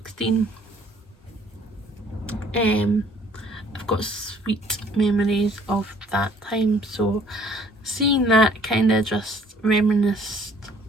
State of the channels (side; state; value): both; normal; correlation 0.59